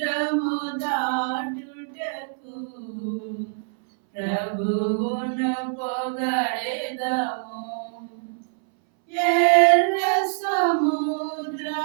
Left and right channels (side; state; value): left; silent; 62 dB below the other